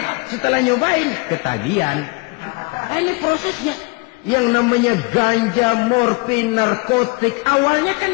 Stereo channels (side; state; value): right; quieter; 28.2 dB